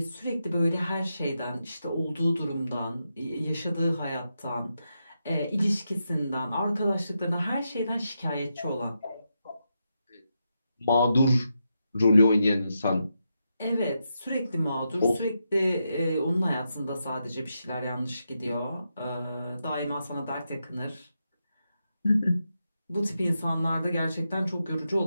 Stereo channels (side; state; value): both; inverted; correlation -0.85